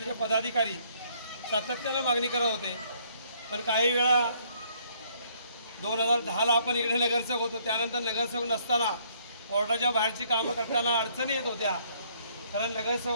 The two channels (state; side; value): inverted; both; correlation -0.65